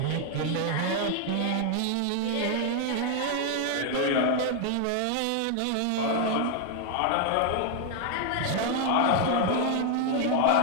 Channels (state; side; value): different; both; correlation 0.00